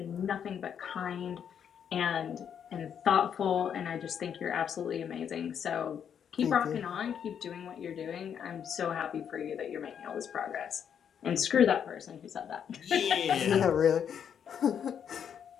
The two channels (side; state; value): right; quieter; 8.2 dB